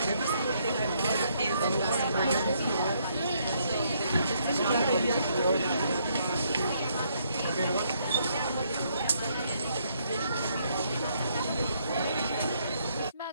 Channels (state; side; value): inverted; both; correlation -0.71